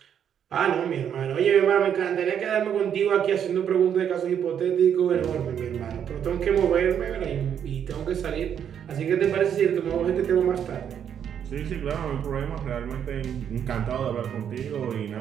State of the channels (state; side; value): quieter; left; 8.7 dB